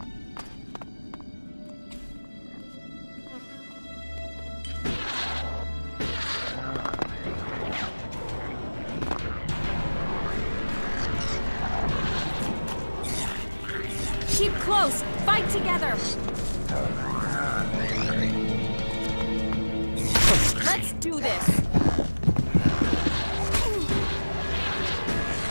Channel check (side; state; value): both; inverted; correlation -1.00